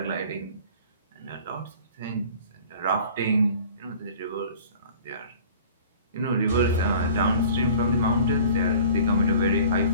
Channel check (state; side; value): inverted; both; correlation -0.46